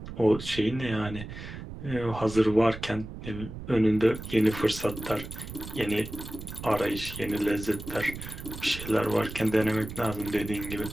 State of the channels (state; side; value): noise; right; rumble, 10 dB below the sound